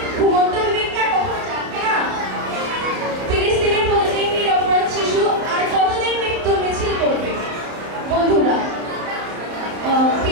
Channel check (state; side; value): late; left; 31 ms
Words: ঘুমন্ত বিবেকটা কখন জানবে না? ফিলিস্তিনের প্রতিদিন নিরপরাধ শিশু আর কতদিন মৃত্যুর মিছিল করবে? বন্ধুরা,